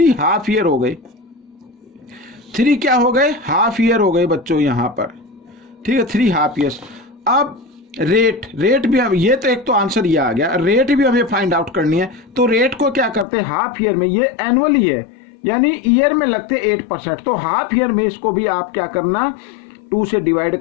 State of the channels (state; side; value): drops out; right; at 13.2 s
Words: हाफ ईयर हो गए। 3 क्या हो गए, हाफ ईयर हो गए बच्चों यहाँ पर। ठीक है, 3 हाफ ईयर्स। अब रेट भी हम, ये तो एक तो आंसर ये आ गया, रेट भी हमें फाइंड आउट करनी है। तो रेट को क्या करते हैं, हाफ ईयर में, ये एनुअली है यानी ईयर में लगते 8%, तो हाफ ईयर में इसको भी आप क्या करना, 2 से डिवाइड